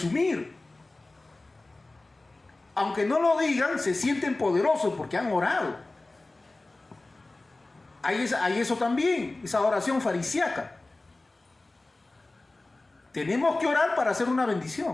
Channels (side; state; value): right; quieter; 3.0 dB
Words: Aunque no lo digan, se sienten poderosos porque han orado. Hay eso también, esa oración farisíaca. Tenemos que orar para hacer una